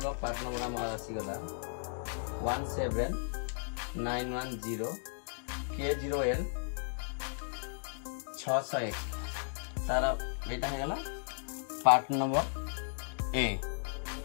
part number आम आसीगला 17910 K0N 601 तार एटा हेगला पार्ट नंबर ए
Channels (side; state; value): right; silent; digital silence